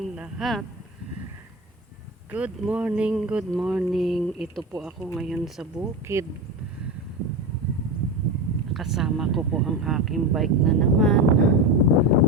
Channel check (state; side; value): normal; both; correlation 0.21